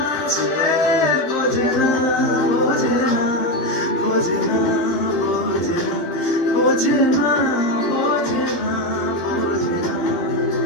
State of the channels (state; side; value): late; right; 12 ms